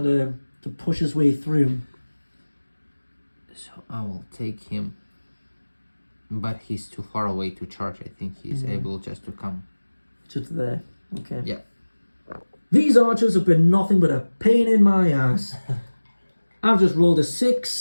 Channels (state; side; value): inverted; both; correlation -1.00